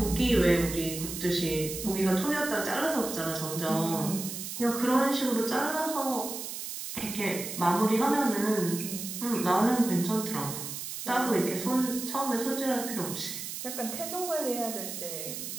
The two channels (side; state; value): right; noise; hiss, 7 dB below the sound